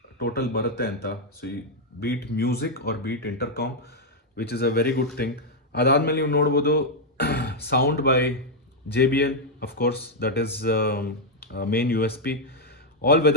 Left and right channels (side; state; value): both; normal; correlation -0.01